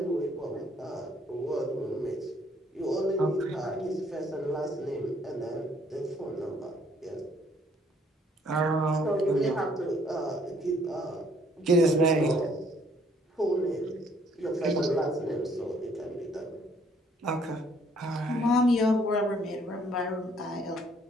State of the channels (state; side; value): normal; both; correlation 0.64